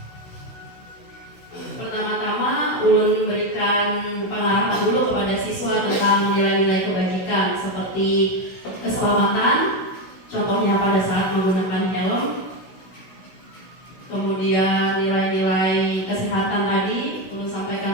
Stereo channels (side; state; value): right; late; 16 ms